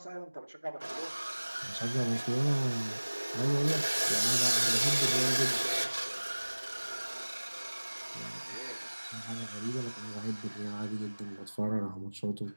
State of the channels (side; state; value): both; inverted; correlation -1.00